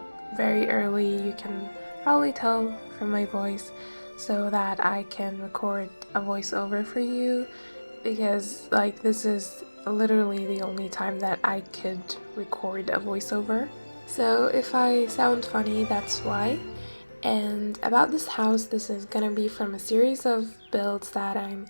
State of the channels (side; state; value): both; inverted; correlation -1.00